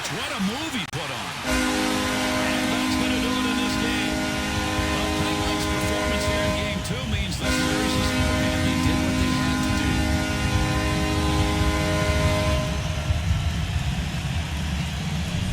What a move he put on. And that's going to do it in this game. The Penguins' performance here in Game 2 means this series is over. And they did what they had to do.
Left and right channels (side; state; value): both; identical; correlation 1.00